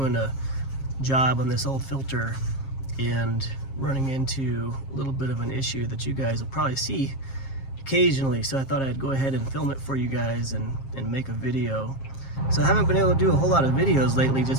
a job on this old filter and running into a little bit of an issue that you guys will probably see occasionally, so I thought I'd go ahead and film it for you guys and make a video. So I haven't been able to do a whole lot of videos lately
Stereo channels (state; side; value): late; right; 7.4 ms